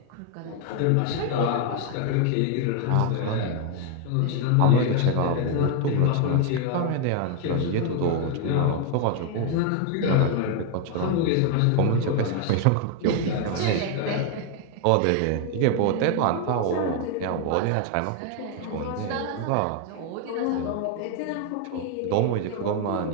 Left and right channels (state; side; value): different; both; correlation 0.01